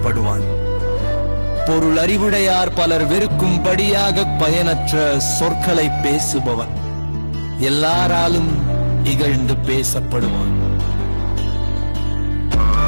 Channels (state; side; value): inverted; both; correlation -1.00